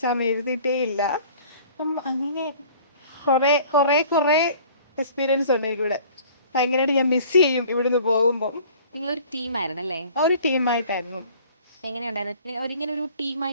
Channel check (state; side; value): inverted; both; correlation -0.50